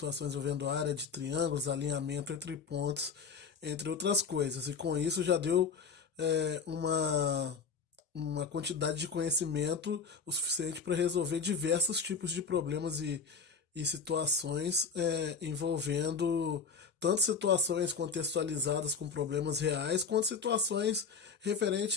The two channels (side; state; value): right; quieter; 5.4 dB